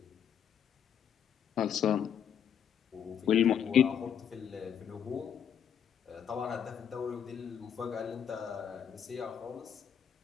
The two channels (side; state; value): right; quieter; 8.5 dB